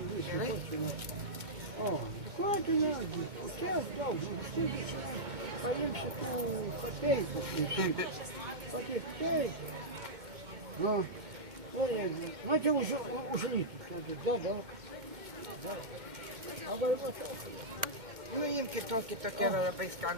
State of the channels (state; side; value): late; left; 2.1 ms